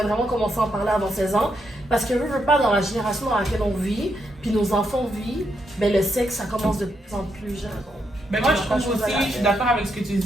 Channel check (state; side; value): normal; both; correlation 0.80